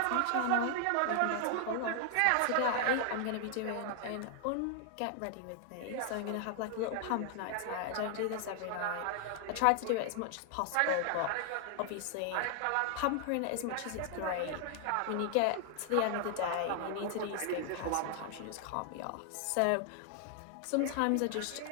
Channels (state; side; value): different; both; correlation 0.00